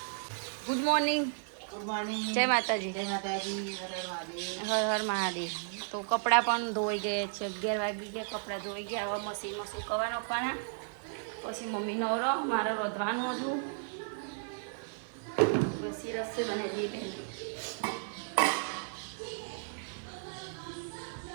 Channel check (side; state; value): left; silent; digital silence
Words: Good morning. જય માતાજી. હર હર મહાદેવ. તો કપડાં પણ ધોઈ ગયા છે. 11 વાગી ગયા, કપડાં ધોઈ ગયા. હવે મશીનમાં સુકવવા નાખવાના. પછી મમ્મી નવરો, મારે રોધવાનું હતું. પછી રસોઈ બનાવી દઈએ.